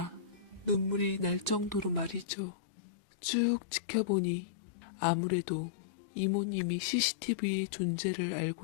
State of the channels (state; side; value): drops out; right; at 2.2 s